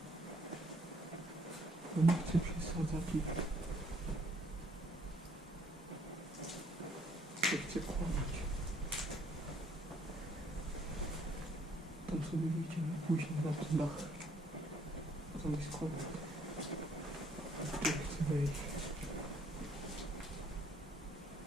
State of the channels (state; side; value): normal; both; correlation 0.65